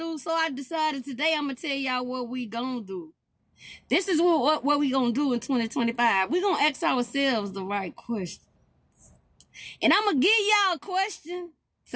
So I decided today I'm gonna tell y'all what we gonna do. This is what we gonna do in 2025. We gonna ask ourselves the right question. And I'm gonna give y'all a question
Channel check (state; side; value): identical; both; correlation 1.00